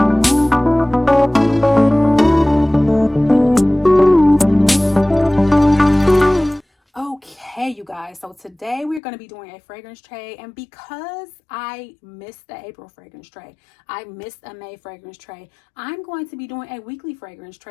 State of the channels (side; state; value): right; drops out; at 9.0 s